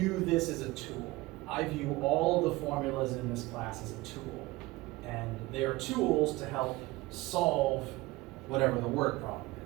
this as a tool. I view all of the formulas in this class as a tool. And they are tools to help solve whatever the word problem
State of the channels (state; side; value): quieter; left; 20.3 dB